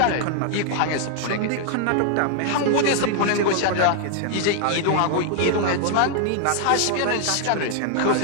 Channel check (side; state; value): both; different; correlation 0.00